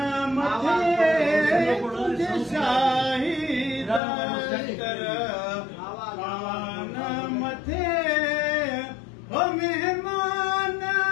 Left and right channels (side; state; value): right; drops out; at 4.0 s